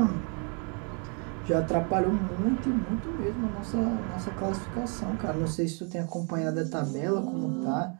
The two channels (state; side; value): quieter; left; 38.0 dB